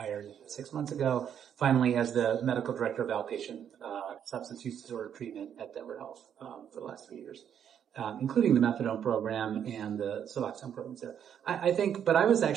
6 months ago, finally as the medical director of outpatient, substance use disorder treatment at Denver Health, for the last 3 years, including the methadone program and the Suboxone programs there. I think, but I was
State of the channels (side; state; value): left; quieter; 8.9 dB